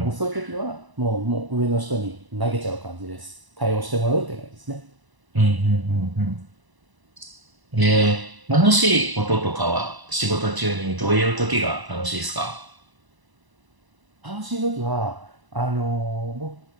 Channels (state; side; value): late; left; 1.0 ms